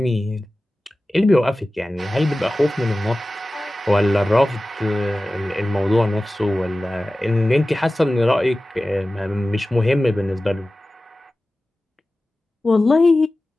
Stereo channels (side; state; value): both; normal; correlation 0.96